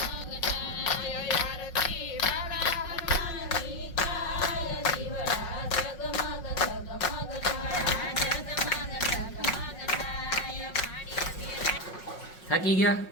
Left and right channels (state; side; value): late; right; 5.5 ms